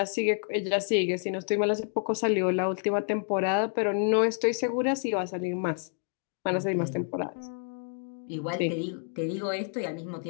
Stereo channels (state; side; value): silent; right; 58 dB below the other